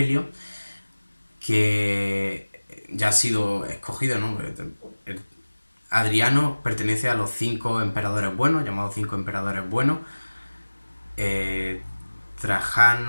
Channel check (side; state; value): both; inverted; correlation -1.00